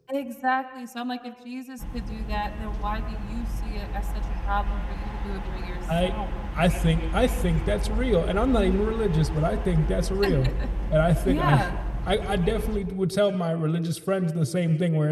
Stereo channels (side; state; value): both; identical; correlation 1.00